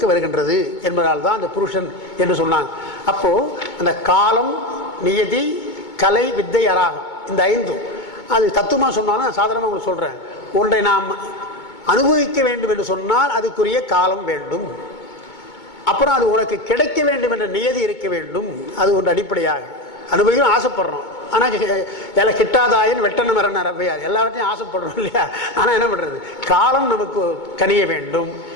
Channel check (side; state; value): right; late; 2.2 ms